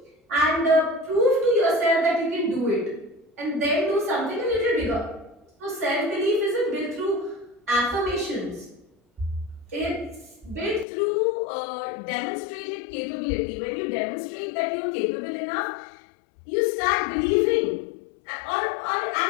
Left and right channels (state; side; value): drops out; right; at 10.9 s